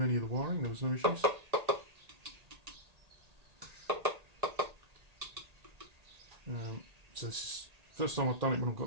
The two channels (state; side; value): late; left; 1.8 ms